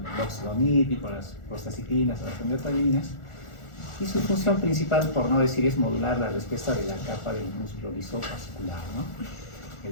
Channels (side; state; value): right; late; 1.4 ms